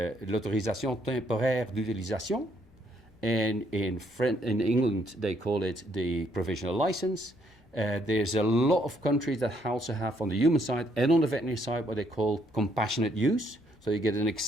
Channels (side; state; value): both; normal; correlation 0.70